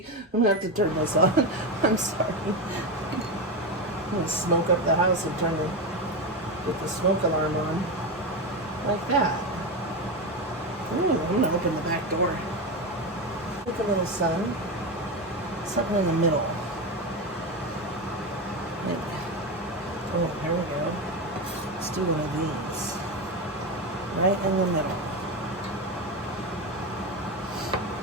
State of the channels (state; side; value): normal; both; correlation 0.16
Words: I'm gonna have to turn this on. I'm sorry. I'm gonna smoke up the house and get the smoke alarm on. Like that. Ooh, I'm gonna open the back door. Look, a little sun. Something in the middle. Maybe. Oh, here we go. Let's do one of these. Right in the middle.